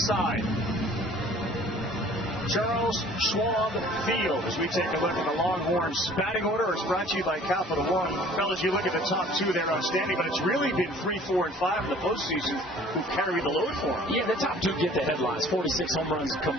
Charles Schwab Field as we take a look at the Longhorns batting order. It's brought to you by Capital One. Fellas, you look at the top two, they're outstanding, but it's really been 3, 4, and 5 in the postseason who carry the load for them. Yeah, the top two get the headlines. 46 home runs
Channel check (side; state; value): both; normal; correlation 0.51